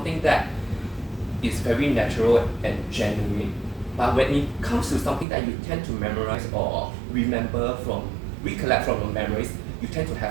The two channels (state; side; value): drops out; left; at 5.2 s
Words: that is very natural and genuine. But when it comes to something that you tend to memorize or recollect from your memories, you tend to